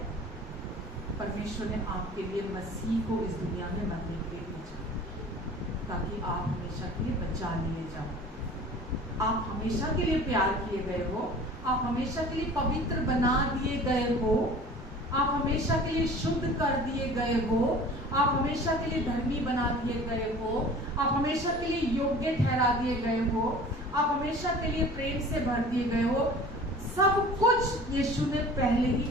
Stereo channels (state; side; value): normal; both; correlation 0.43